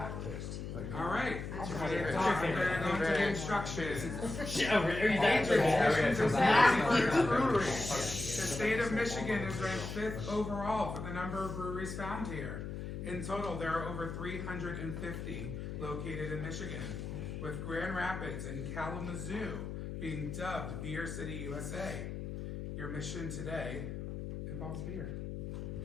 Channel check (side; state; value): left; noise; hum, 6 dB below the sound